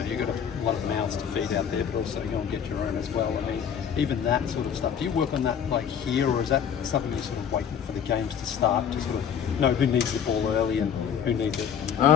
you've got a lot of mouths to feed out there, but also go and get your own as well. I mean, even that sort of stuff. Do you work on that like here, or is that something you're sort of waiting for the games to start to sort of know who needs the ball early and who needs it?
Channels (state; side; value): quieter; right; 8.0 dB